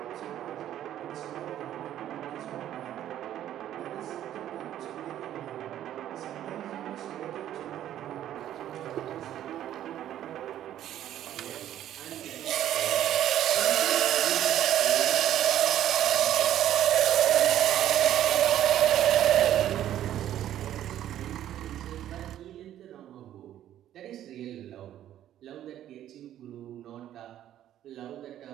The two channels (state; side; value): quieter; left; 11.8 dB